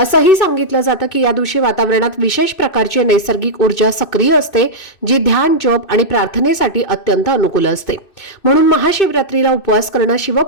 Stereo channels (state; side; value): late; right; 2.6 ms